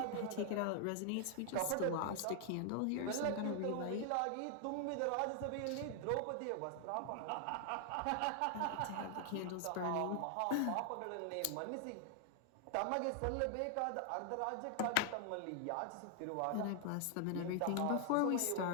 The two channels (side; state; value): both; different; correlation 0.00